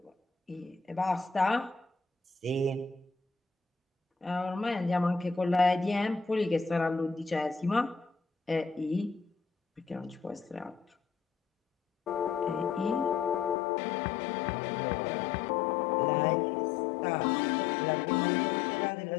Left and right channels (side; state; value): right; drops out; at 13.6 s